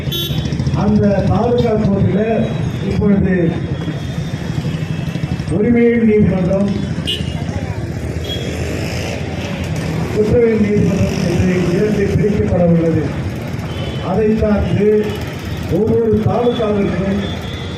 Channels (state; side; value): identical; both; correlation 1.00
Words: அந்த பாதுகாப்பு இப்பொழுது உரிமையின் நீதிமன்றம், குற்றவியல் நீதிமன்றம் என்று 2 பிரிக்கப்பட உள்ளது. அதை சார்ந்து ஒவ்வொரு தாலுகாவிற்கும்